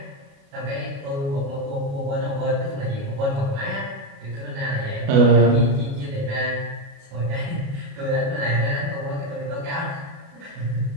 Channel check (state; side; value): late; left; 36 ms